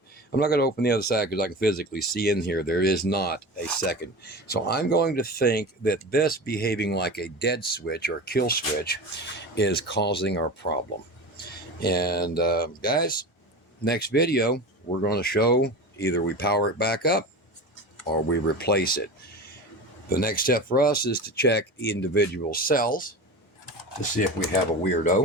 I'm not going to open the other side because I can physically see in here there is not a second. So I'm going to think that this behaving like a dead switch or kill switch is causing our problem. And guys, next video, we're going to show either we power it back up or we replace it. The next step for us is to check individual cells to see if we have a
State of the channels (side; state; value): both; normal; correlation 0.30